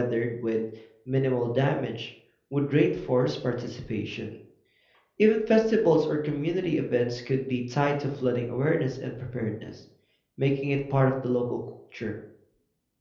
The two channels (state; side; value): identical; both; correlation 1.00